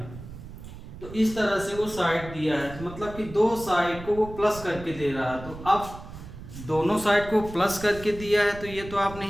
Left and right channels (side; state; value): right; noise; rumble, 13 dB below the sound